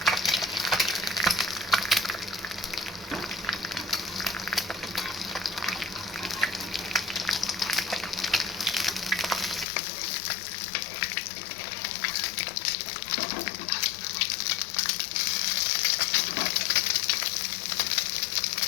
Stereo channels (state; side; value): drops out; right; at 9.7 s